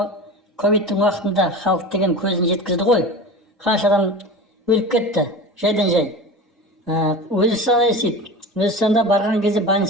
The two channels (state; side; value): normal; both; correlation 0.32